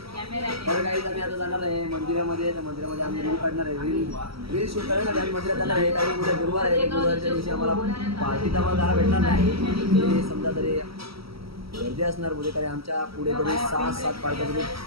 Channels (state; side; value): late; left; 0.75 ms